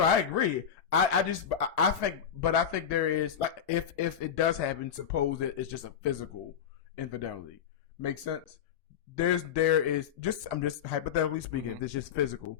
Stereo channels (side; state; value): right; quieter; 8.1 dB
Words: I think there is, like, if it does happen, suppose that it's just a physical infidelity. Makes sense? There is just, I'm just hypothetically speaking, if it's just physical,